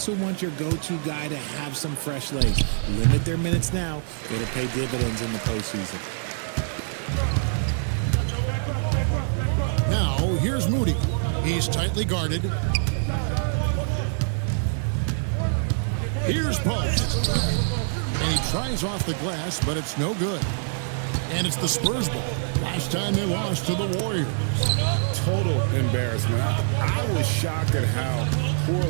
want your go-to guy to have some fresh legs. Limit their minutes now. It'll pay dividends in the postseason. Now, here's Moody. He's tightly guarded. Here's Post. And he tries off the glass, but it's no good. And it's the Spurs ball. Last time they lost to the Warriors. Total embarrassment. I was shocked at how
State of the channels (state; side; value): silent; left; digital silence